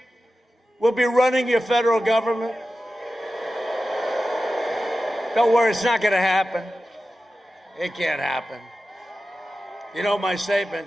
will be running your federal government. Don't worry, it's not going to happen. It can't happen. You know my statement,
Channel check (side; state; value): both; normal; correlation 0.93